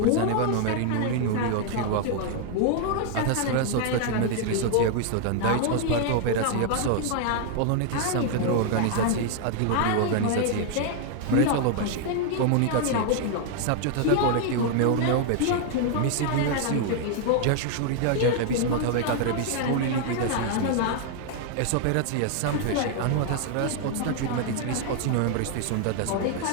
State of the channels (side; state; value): both; different; correlation 0.00